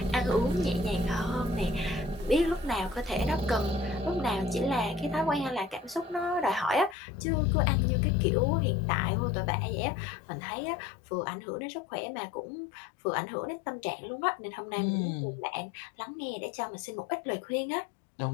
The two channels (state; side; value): drops out; right; at 7.0 s